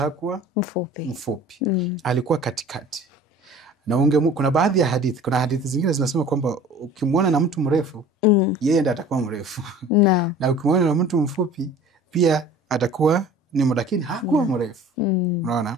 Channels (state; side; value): normal; both; correlation 0.45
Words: mfupi. Alikuwa katikati. Na kuna baadhi ya hadithi, kuna hadithi zingine zinasema kwamba ukimwona na mtu mrefu, yeye ndiye atakuwa mrefu. Na ukimwona na mtu mfupi, pia atakuwa ni lakini hakuwa mrefu. Unaona?